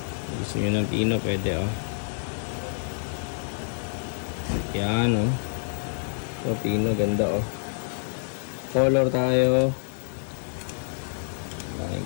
Gusto nyo ng pino, pwede o. Yan o. So, pino, ganda o. Color tayo.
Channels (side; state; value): right; silent; digital silence